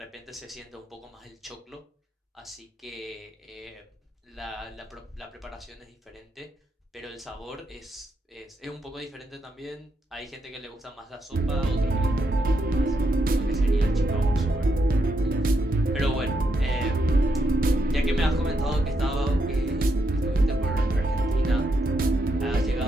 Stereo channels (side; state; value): both; normal; correlation 0.81